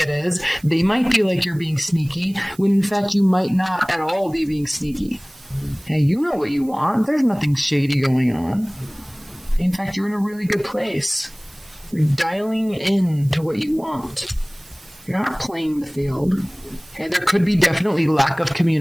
it is. They might feel like you're being sneaky, when in fact you might not at all be being sneaky. Hey, you know what you want. There's nothing shady going on. In fact, you're in a really good place. You're dialing in to what you want. You're not playing the field. Okay, there could be definitely lack of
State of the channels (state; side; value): noise; right; hiss, 24 dB below the sound